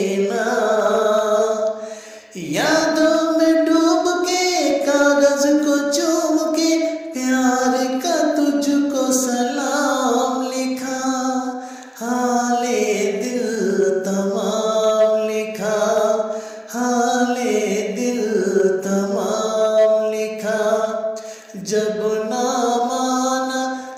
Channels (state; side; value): identical; both; correlation 1.00